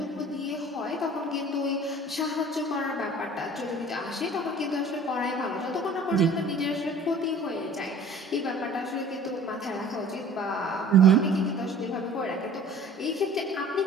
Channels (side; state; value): both; normal; correlation 0.47